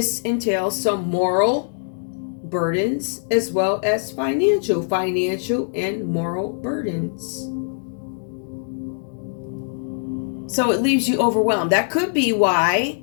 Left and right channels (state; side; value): silent; right; digital silence